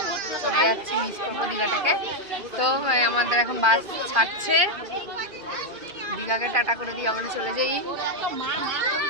চলে যাচ্ছি, মিস করবো দীঘাটাকে। তো আমাদের এখন বাস ছাড়ছে, দীঘাকে টাটা করে দিয়ে আমরা চলে যাই।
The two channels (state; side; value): late; left; 2.5 ms